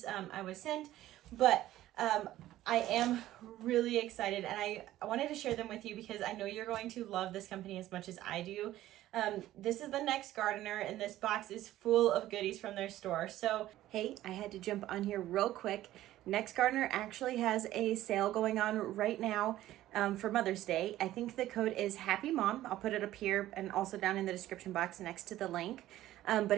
I was sent, but I am really excited, and I wanted to share them with you because I know you're going to love this company as much as I do. This is the Next Gardener, and this box is full of goodies from their store. So, hey, I had to jump on here real quick. Next Gardener actually has a sale going on right now for Mother's Day. I think the code is Happy Mom. I'll put it up here and also down in the description box next to the link.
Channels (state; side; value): quieter; left; 14.4 dB